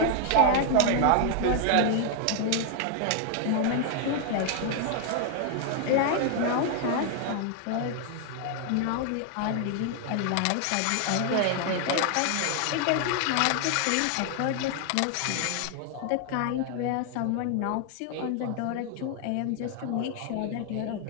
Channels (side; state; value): both; different; correlation 0.00